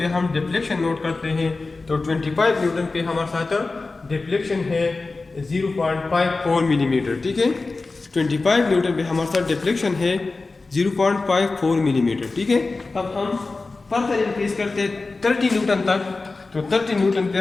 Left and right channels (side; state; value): right; quieter; 3.7 dB